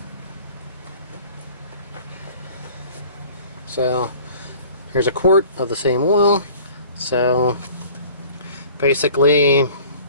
So here's a quart of the same oil. So basically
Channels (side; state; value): both; inverted; correlation -0.48